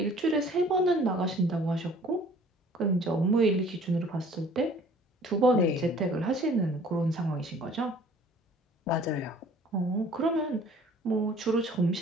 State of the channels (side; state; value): both; normal; correlation 0.52